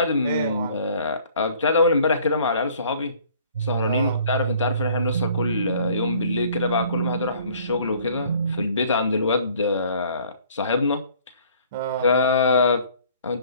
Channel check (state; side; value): inverted; both; correlation -0.56